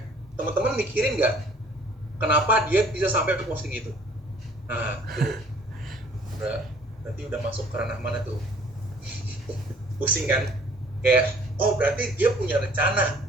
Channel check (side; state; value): both; normal; correlation 0.56